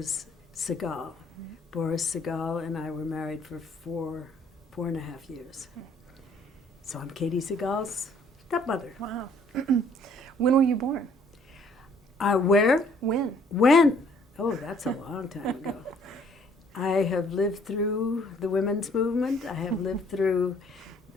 Segal. Mm-hmm. Boris Segal and I were married for four and a half years. So I'm Katie Segal's stepmother. Wow. When were you born? Where? When? When? Oh, that's a long time ago. I have lived through the women's movement. I have lived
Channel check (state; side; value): normal; both; correlation 0.61